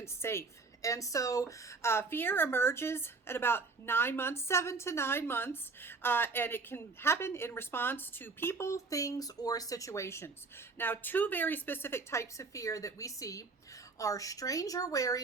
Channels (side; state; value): left; quieter; 4.1 dB